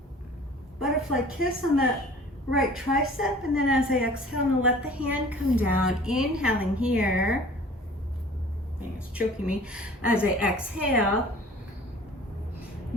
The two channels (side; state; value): both; normal; correlation 0.47